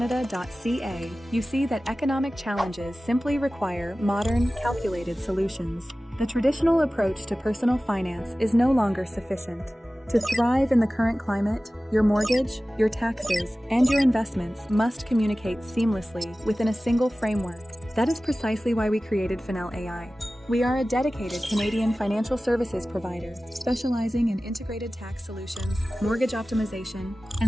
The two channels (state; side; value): normal; both; correlation 0.96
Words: you see that economic challenges simply require modern, calculated solutions. The traditional approach to personal finance is no longer sufficient. To thrive in the current climate, your mortgage, your taxes, and your investments must communicate seamlessly within a single framework. That is precisely why we created Finel AI. We are a dedicated Canadian financial services provider, specializing in integrated tax solutions, mortgage optimization,